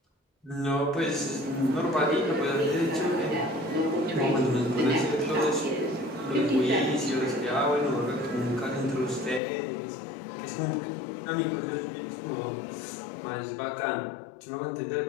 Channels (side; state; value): right; drops out; at 9.4 s